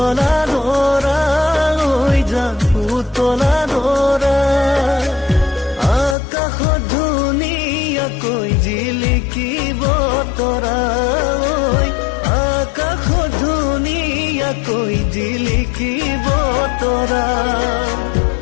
দৰা হৈ যা পুতলা দৰা আকাশত ধুনীয়াকৈ জিলিকিব তৰা আকাশত ধুনীয়াকৈ জিলিকিব তৰা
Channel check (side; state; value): right; drops out; at 6.2 s